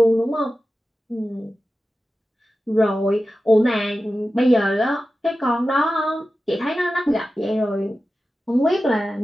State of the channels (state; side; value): normal; both; correlation 0.94